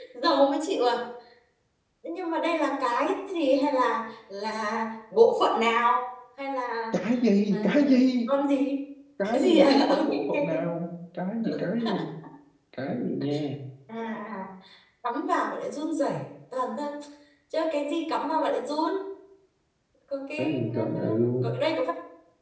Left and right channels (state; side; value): identical; both; correlation 1.00